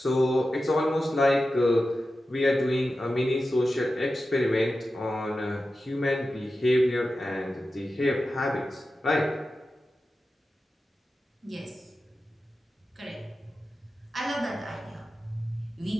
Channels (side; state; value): both; normal; correlation 0.92